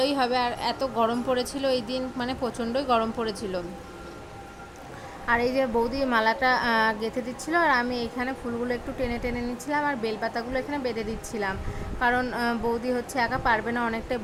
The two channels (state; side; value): identical; both; correlation 1.00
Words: হবে। আর এত গরম পড়েছিল এই দিন, মানে প্রচণ্ডই গরম পড়েছিল। আর এই যে বৌদি মালাটা গেঁথে দিচ্ছিল, আর আমি এখানে ফুলগুলো একটু টেনে টেনে নিচ্ছিলাম, আর বেলপাতাগুলো এখানে বেঁধে দিচ্ছিলাম, কারণ বৌদি হচ্ছে একা পারবে না, অনেকটাই